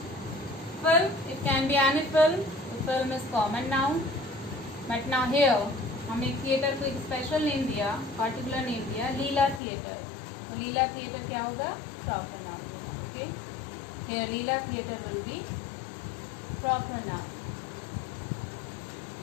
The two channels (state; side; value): drops out; right; at 9.6 s